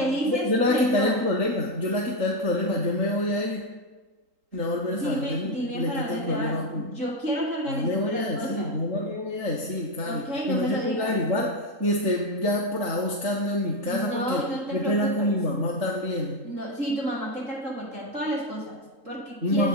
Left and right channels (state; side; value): late; left; 3.8 ms